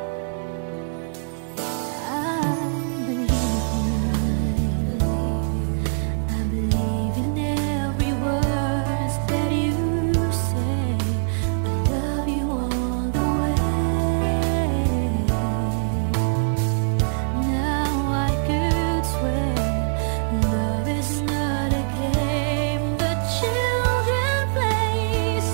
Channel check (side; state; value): left; silent; digital silence